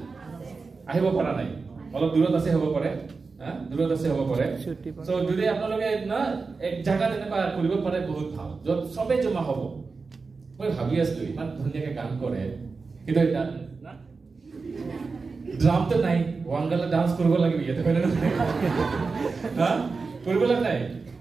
আহিব পৰা নাই অলপ দূৰত আছে হ'ব পাৰে হা দূৰত আছে হ'ব পাৰে সো যদি আপোনালোকে না এক জায়গাত এনেকুৱা কৰিব পাৰে বহুত ভাল যত সবে জমা হ'ব মই ভাবি আছো ইমান ধুনীয়াকে গান কৰে কিন্তু এটা না ড্ৰাম তো নাই ওয়াংগালা ডান্স কৰিব লাগিব ইয়াতে হয় না হা কৰিব লাগে নাই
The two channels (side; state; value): left; quieter; 4.4 dB